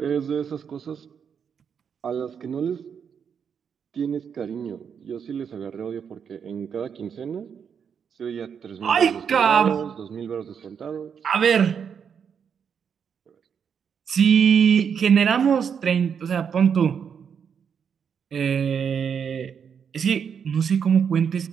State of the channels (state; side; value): quieter; left; 7.2 dB